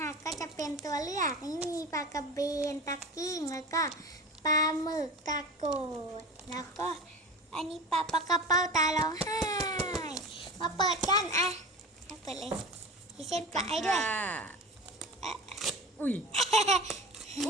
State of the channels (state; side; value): normal; both; correlation 0.32